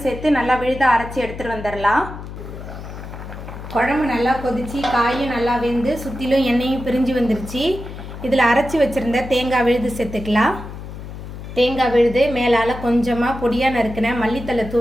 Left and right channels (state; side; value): noise; left; hum, 11 dB below the sound